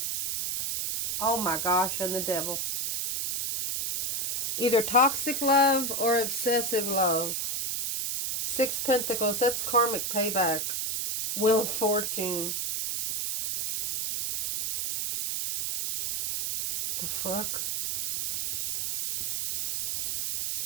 Oh my gosh, and the devil. Either toxic love or obsessive love. 6 Pentacles, that's karmic payback. Wheel of Fortune. The fuck?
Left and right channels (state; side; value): noise; right; hiss, 1 dB below the sound